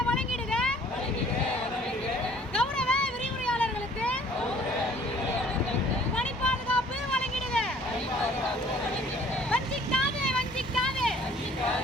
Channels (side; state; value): both; normal; correlation 0.55